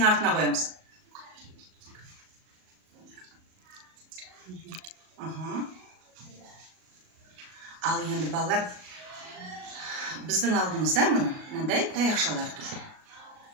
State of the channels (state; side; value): late; left; 38 ms